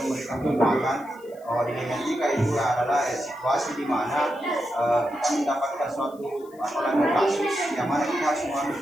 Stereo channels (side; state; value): left; noise; hiss, 28 dB below the sound